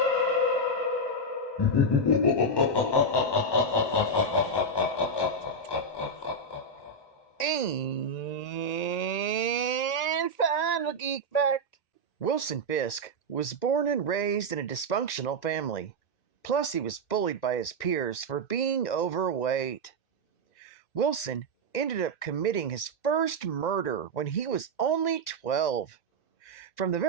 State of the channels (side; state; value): right; late; 1.9 ms